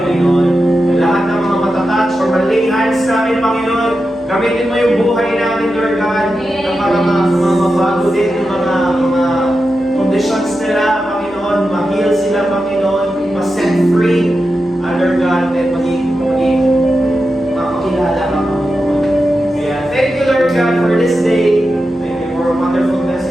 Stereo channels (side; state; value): both; normal; correlation 0.90